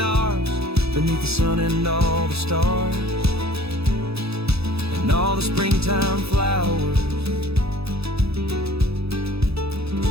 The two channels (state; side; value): late; left; 0.78 ms